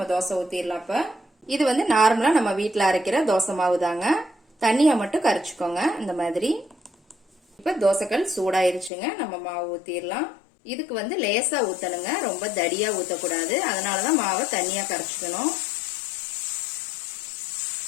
தோசை ஊத்திடலாம். இப்ப இது நார்மலா நம்ம வீட்டுல அரைக்கிற தோசை மாவு தாங்க. தண்ணியா மட்டும் கரைச்சுக்கோங்க இந்த மாதிரி. இப்ப தோசைக்கல் சூடாயிருச்சுங்க. நம்ம மாவு ஊத்திடலாம். இதுக்கு லேசா ஊத்தணுங்க, ரொம்ப தடியா ஊத்தக்கூடாது. அதனாலதான் மாவை தண்ணியா கரைச்சுக்கணும்.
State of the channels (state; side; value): drops out; right; at 8.9 s